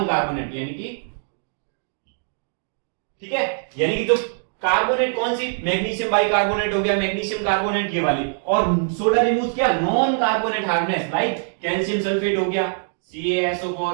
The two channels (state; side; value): silent; left; digital silence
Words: कार्बोनेट यानी कि, ठीक है, यानी कि जो कार्बोनेट कौन सी, मैग्नीशियम बाइकार्बोनेट हो गया, मैग्नीशियम कार्बोनेट ये वाली, और सोडा रिमूव्स क्या, non carbonate hardness, like calcium sulphate हो गया, CaSO4,